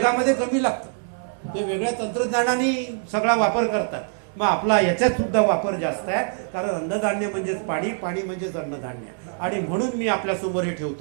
कमी लागतं. ते वेगळ्या तंत्रज्ञानाने सगळा वापर करतात. मग आपला याच्यात सुद्धा वापर जास्त आहे, कारण अन्नधान्य म्हणजेच पाणी, पाणी म्हणजेच अन्नधान्य. आणि म्हणून मी आपल्यासमोर हे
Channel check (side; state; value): left; silent; 62 dB below the other